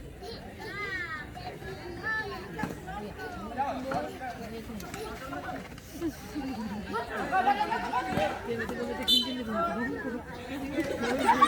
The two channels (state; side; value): identical; both; correlation 1.00